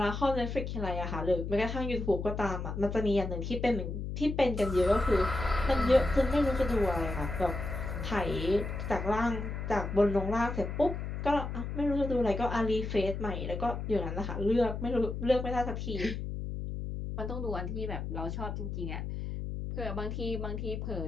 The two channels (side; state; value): left; noise; hum, 5 dB below the sound